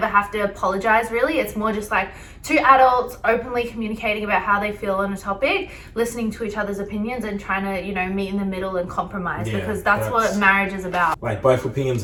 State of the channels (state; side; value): identical; both; correlation 1.00